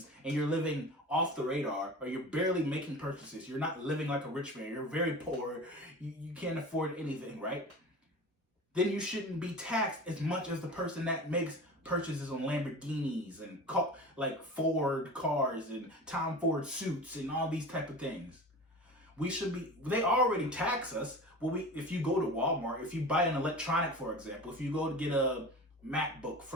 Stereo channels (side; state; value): both; normal; correlation 0.35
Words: and you're living off the radar or you're barely making purchases, you're not living like a rich man, you're very poor, you can't afford anything, right? Then you shouldn't be taxed as much as the person that makes purchases on Lamborghinis and like Ford cars and Tom Ford suits and all these type of things. We should be, they already tax us. Well, if you go to Walmart, if you buy an electronic, for example, if you go to get a MacBook